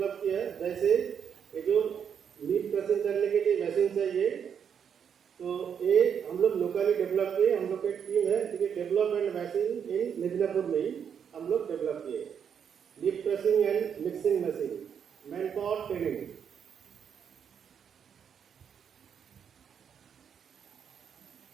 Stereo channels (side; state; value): left; quieter; 7.7 dB